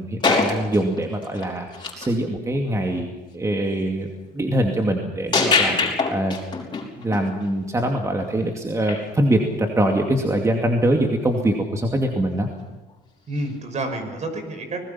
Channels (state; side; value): normal; both; correlation 0.63